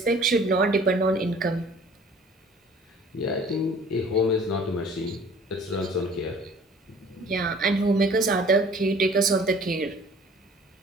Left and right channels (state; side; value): normal; both; correlation 0.51